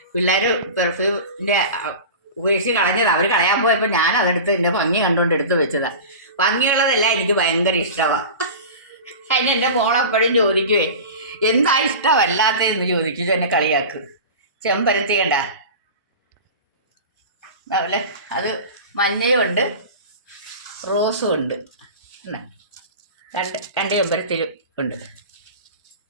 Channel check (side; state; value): both; inverted; correlation -0.33